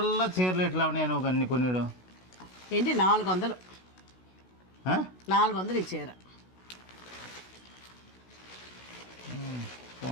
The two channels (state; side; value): late; right; 16 ms